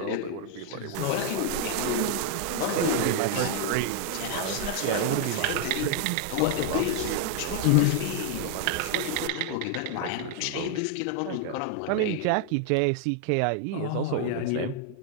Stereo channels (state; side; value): different; both; correlation 0.00